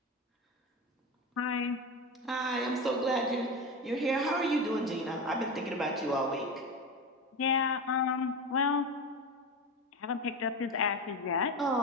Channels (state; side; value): normal; both; correlation 0.22